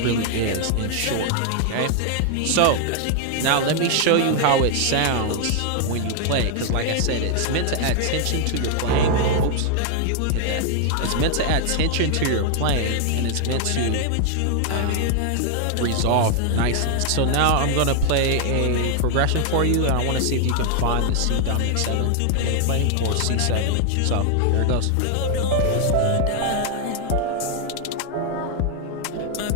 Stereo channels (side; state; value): both; different; correlation 0.00